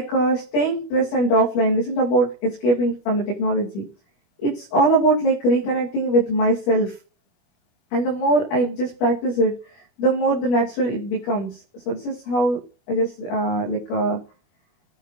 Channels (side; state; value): right; late; 25 ms